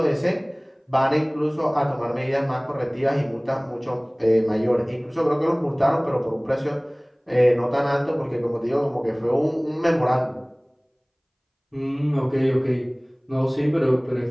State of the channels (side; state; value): both; identical; correlation 1.00